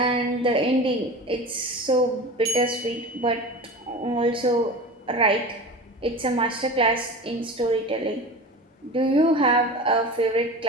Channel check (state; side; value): normal; both; correlation 0.32